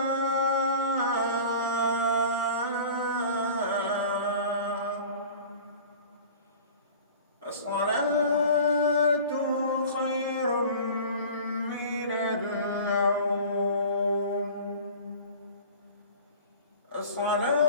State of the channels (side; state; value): both; inverted; correlation -0.42